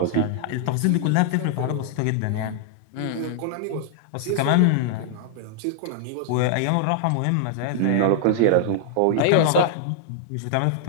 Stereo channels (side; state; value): both; different; correlation -0.01